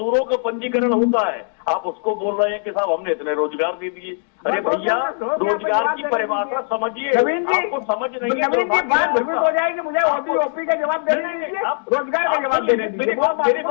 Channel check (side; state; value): right; silent; 63 dB below the other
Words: का पंजीकरण होता है, आप उसको बोल रहे हैं कि साहब हमने इतने रोजगार दे दिए। अरे भैया, रोजगार की परिभाषा समझिए, आपको समझ नहीं है। नवीन जी बात भ्रमित हो जाएगी, मुझे ओडीओपी का जवाब देने दीजिए, रोजगार का जवाब देने दीजिए। मेरी